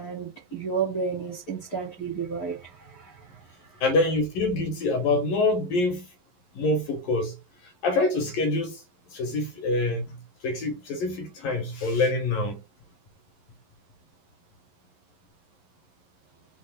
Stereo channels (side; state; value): right; late; 11 ms